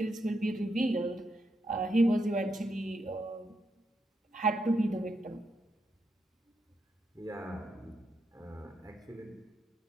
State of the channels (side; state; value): both; normal; correlation 0.82